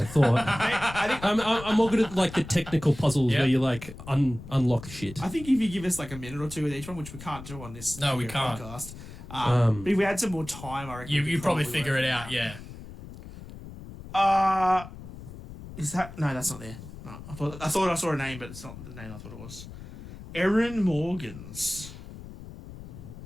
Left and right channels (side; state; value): left; noise; rumble, 14 dB below the sound